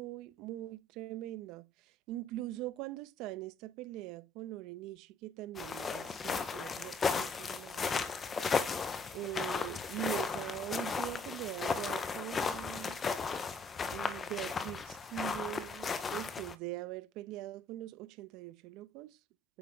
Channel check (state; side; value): normal; both; correlation 0.63